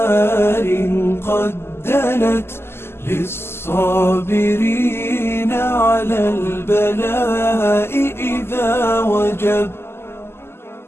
قد دنت للصابرين على البلاء إذا وجب.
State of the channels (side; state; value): right; late; 0.12 ms